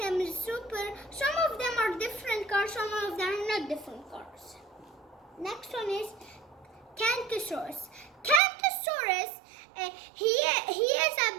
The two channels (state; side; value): drops out; left; at 8.4 s